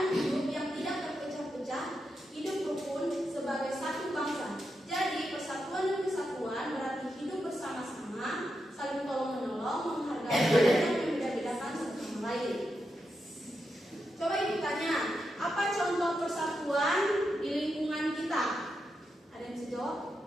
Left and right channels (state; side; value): normal; both; correlation 0.86